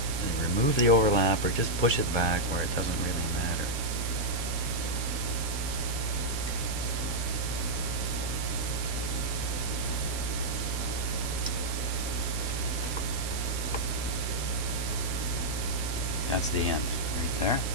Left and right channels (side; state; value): right; noise; hiss, 7 dB below the sound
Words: And remove the overlap or just push it back where it doesn't really matter. That's the end, right there.